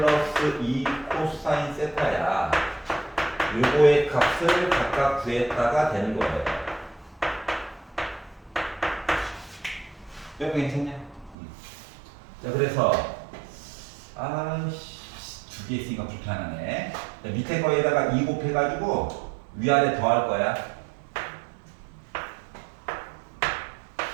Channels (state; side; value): drops out; left; at 11.4 s